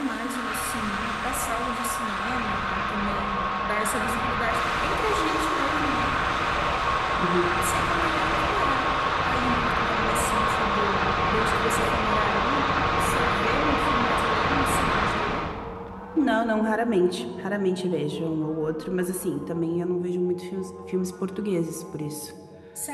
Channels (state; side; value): identical; both; correlation 1.00